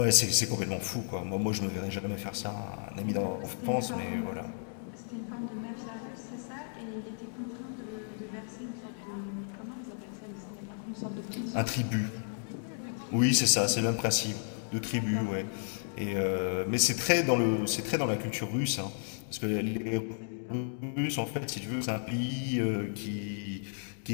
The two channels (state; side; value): silent; right; digital silence